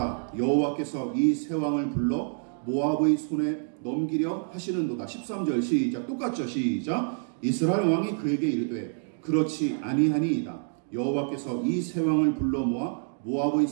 여호와께서 이 새 왕을 불러 모압의 손에 넘기려 하시는도다. 13절 시작. 똑같죠? 시작. 이스라엘 왕이 그에게 이르되 그렇지 아니하니이다. 여호와께서 이 새 왕을 불러 모아 모압의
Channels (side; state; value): left; silent; digital silence